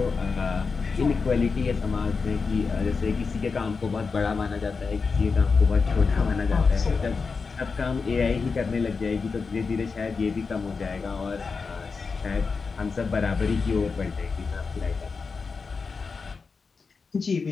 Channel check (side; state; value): right; quieter; 4.8 dB